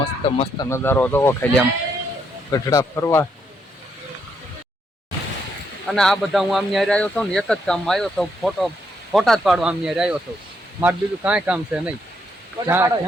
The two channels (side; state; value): both; normal; correlation 0.76